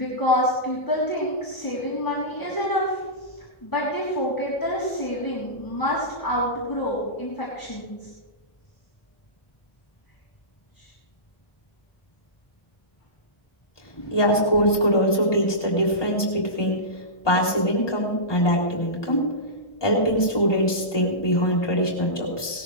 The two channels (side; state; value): right; late; 1.2 ms